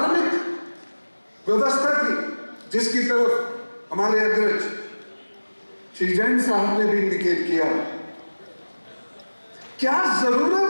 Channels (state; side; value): inverted; both; correlation -1.00